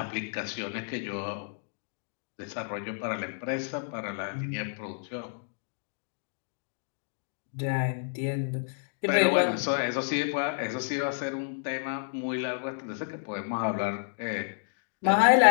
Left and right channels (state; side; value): silent; right; digital silence